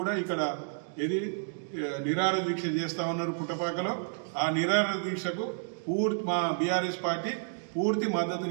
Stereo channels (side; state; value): left; silent; digital silence